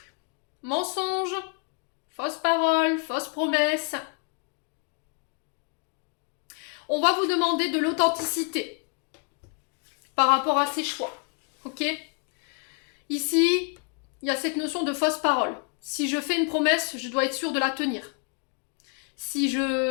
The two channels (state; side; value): quieter; right; 37.5 dB